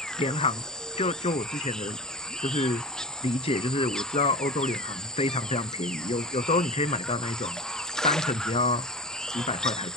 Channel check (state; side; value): normal; both; correlation 0.31